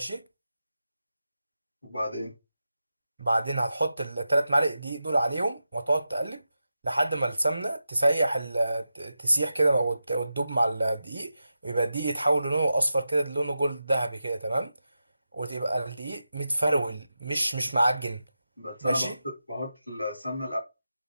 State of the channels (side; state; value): both; inverted; correlation -0.90